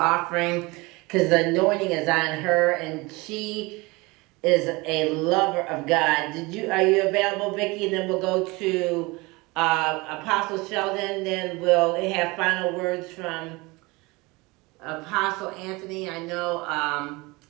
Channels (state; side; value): quieter; left; 24.1 dB